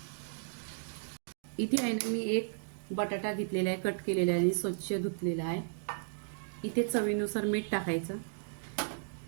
इथे आहे ना मी 1 बटाटा घेतलेला आहे, कट केलेला आहे आणि स्वच्छ धुतलेला आहे। इथे चवीनुसार मीठ टाकायचं।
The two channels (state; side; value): silent; left; digital silence